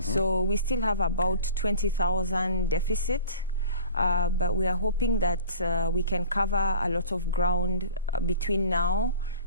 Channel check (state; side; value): inverted; both; correlation -0.41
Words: we still have about 20,000 deficit. But we are hoping that we can cover a lot of ground between now